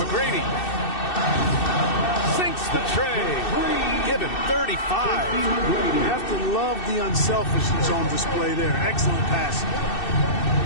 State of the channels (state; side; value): late; right; 2.6 ms